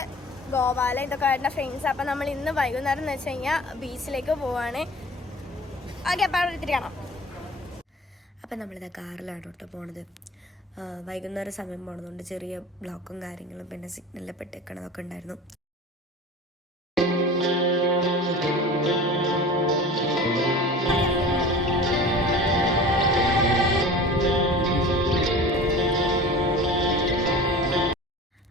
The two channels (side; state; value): both; normal; correlation 0.38